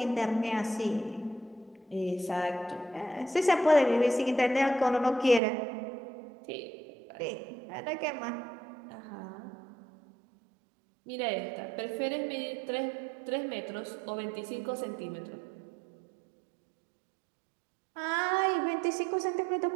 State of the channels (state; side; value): drops out; left; at 5.4 s